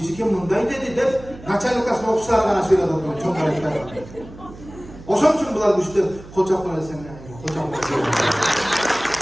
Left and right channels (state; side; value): noise; right; hum, 18 dB below the sound